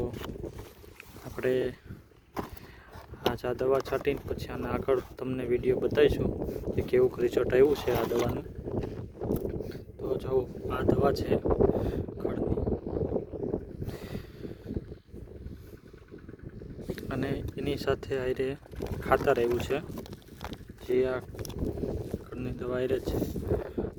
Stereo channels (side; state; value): both; identical; correlation 1.00